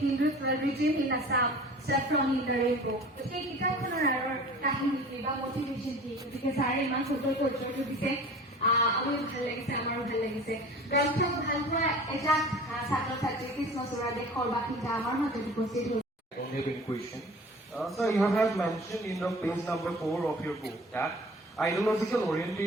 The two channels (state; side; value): normal; both; correlation 0.42